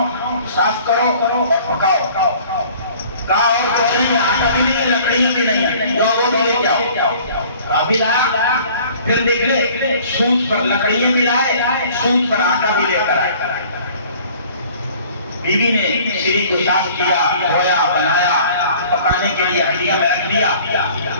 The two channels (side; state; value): both; inverted; correlation -0.51